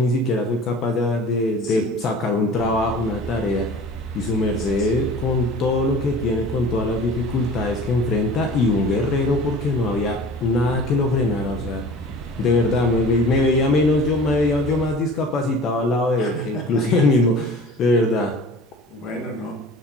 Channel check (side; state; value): both; normal; correlation 0.43